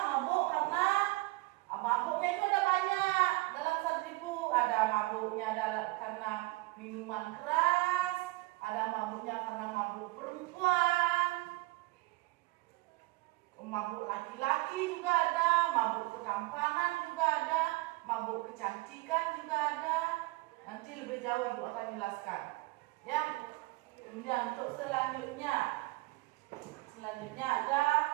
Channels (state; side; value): quieter; left; 22.3 dB